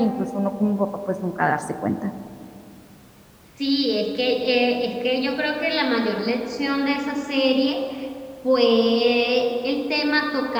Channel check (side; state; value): both; identical; correlation 1.00